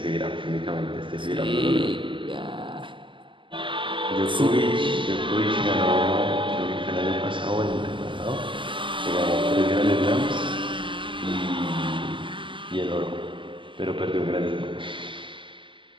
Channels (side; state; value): left; late; 0.25 ms